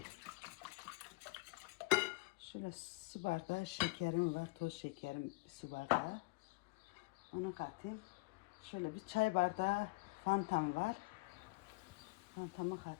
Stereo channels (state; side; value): quieter; right; 24.4 dB